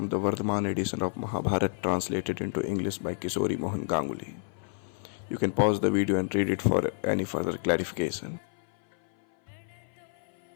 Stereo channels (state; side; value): silent; right; 57 dB below the other